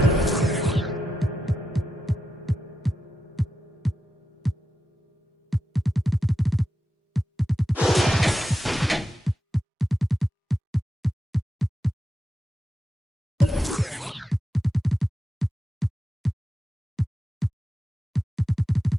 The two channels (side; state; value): both; normal; correlation 0.89